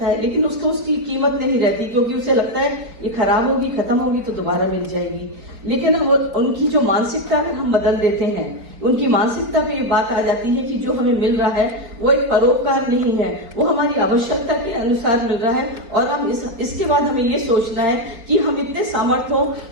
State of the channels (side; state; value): left; late; 4.2 ms